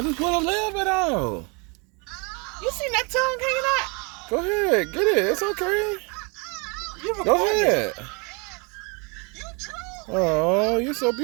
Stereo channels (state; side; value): quieter; left; 31.6 dB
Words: just want a little bit out. You seen that tongue hanging out? Go ahead. Get it. It's okay. You Go recording. ahead. Oh, you're so